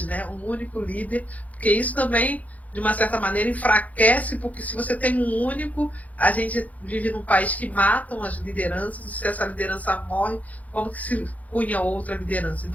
né, um único líder, porque isso também, de uma certa maneira, enfraquece, porque se você tem um único, a gente vive num país que matam as lideranças, e se essa liderança morre, como que se cunha outra liderança?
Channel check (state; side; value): late; right; 0.073 ms